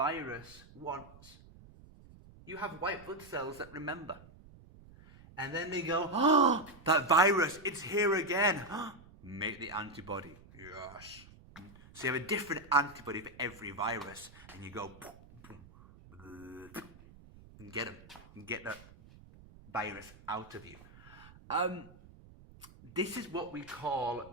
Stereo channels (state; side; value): noise; right; rumble, 21 dB below the sound